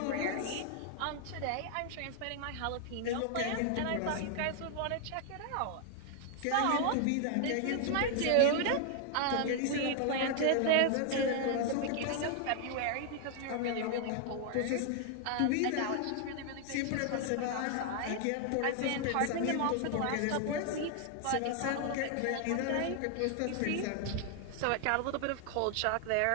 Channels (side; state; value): both; different; correlation 0.00